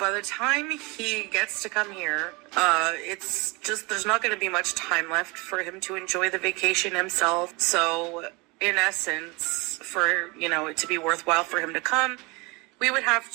the time he gets to come here, it's just, there's not going to be much time left for him to enjoy the vacation himself. So in essence, for, you know, it to be worthwhile for him to come, we would have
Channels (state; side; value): quieter; left; 26.6 dB